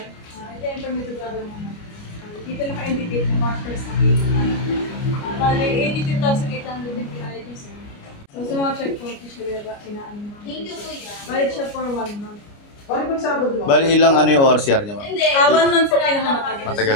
ito yung permitted gagawin mo. Dito naka-indicate ng factors sa dito. Bali, 82,800 yung PID sir. So sa mga checkpoint, siya ba inaan mo? Bali siya for 1 month. Bali ba Sabado mo? Bali ilang ano yung ORCR niya, ma'am? 1 month po pinakamatagal. Matagal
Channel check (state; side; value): late; right; 29 ms